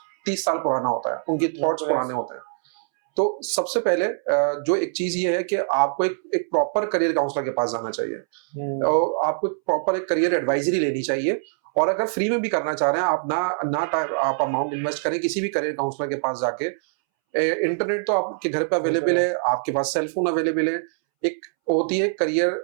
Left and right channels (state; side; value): silent; left; 63 dB below the other